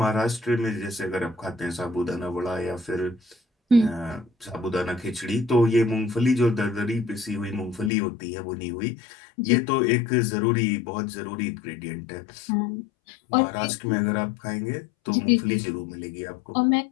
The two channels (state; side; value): drops out; right; at 7.9 s